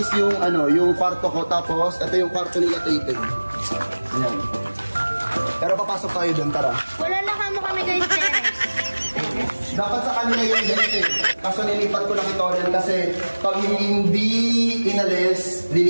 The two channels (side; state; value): both; inverted; correlation -1.00